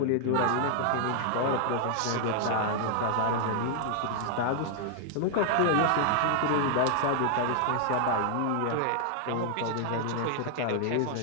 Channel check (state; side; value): different; both; correlation 0.00